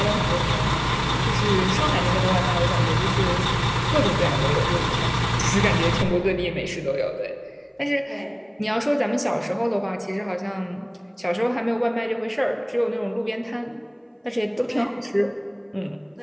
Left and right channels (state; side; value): identical; both; correlation 1.00